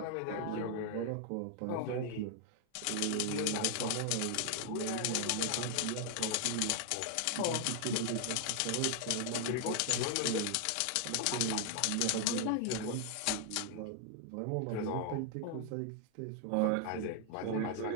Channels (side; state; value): both; different; correlation 0.00